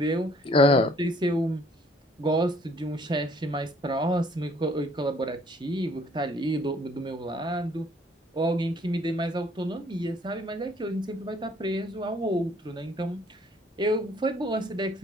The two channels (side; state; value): both; normal; correlation 0.60